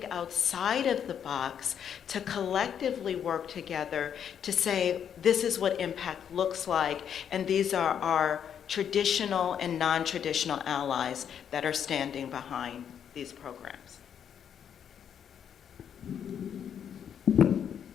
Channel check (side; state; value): right; quieter; 8.5 dB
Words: outside of the box to collectively work together to say, this is what impact looks like, and these are our traditional and non-traditional allies that are standing behind these programs?